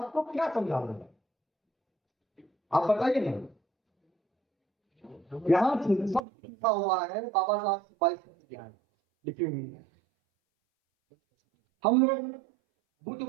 क्या समझा रहा हूं, आप बताइए ना। यहाँ सब लिखा हुआ है, बाबा साहब की 22 लिखी हुई है। हम लोग बुद्ध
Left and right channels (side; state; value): left; drops out; at 6.2 s